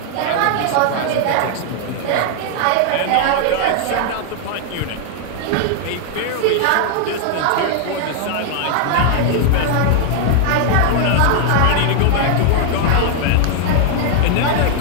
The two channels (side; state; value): both; different; correlation 0.00